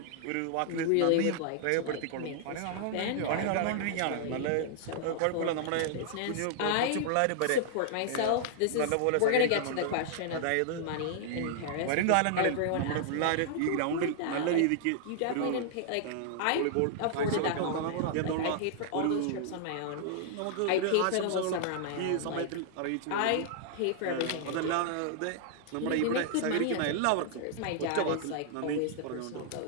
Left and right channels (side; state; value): both; different; correlation -0.01